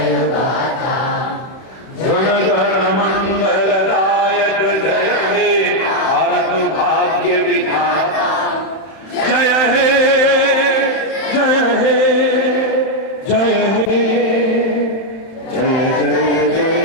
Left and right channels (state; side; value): late; right; 31 ms